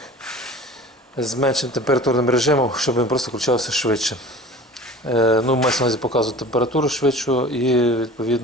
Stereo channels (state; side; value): normal; both; correlation 0.41